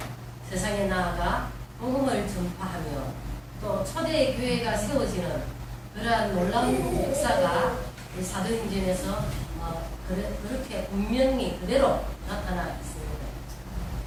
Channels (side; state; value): both; identical; correlation 1.00